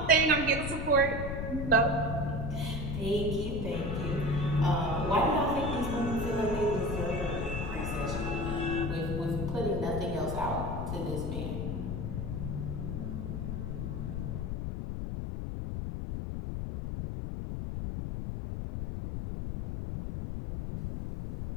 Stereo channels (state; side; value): noise; left; rumble, 3 dB below the sound